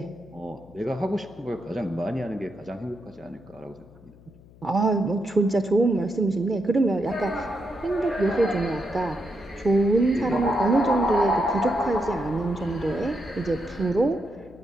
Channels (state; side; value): noise; left; hum, 24 dB below the sound